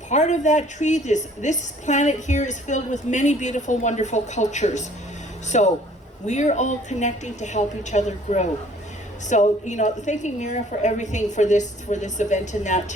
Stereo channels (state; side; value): normal; both; correlation 0.56